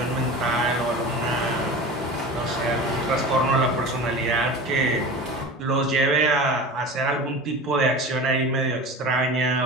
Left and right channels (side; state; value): both; normal; correlation 0.33